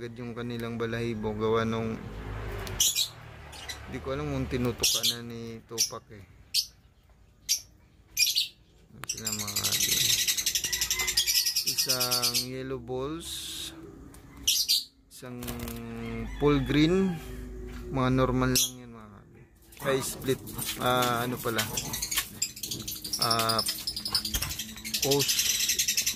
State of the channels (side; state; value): both; identical; correlation 1.00